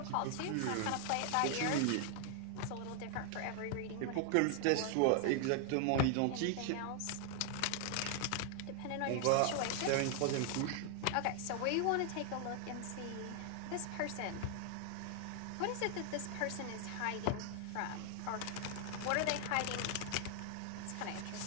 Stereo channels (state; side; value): different; both; correlation 0.00